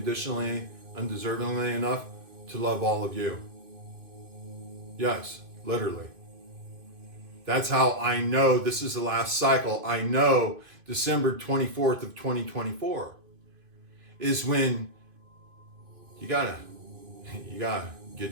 undeservingly enough to love all of you. Yes, literally. That's how I know this is the last cycle. I know December 24th of 2024 is when you gotta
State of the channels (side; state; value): left; late; 2.5 ms